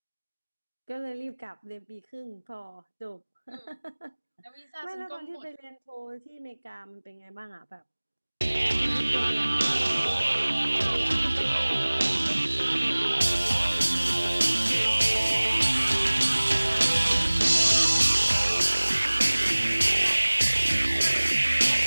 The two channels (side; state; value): both; inverted; correlation -1.00